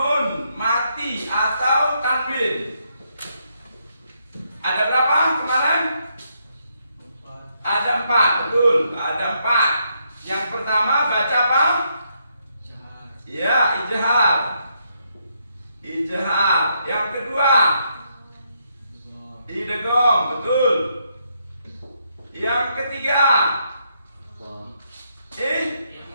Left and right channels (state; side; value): inverted; both; correlation -0.77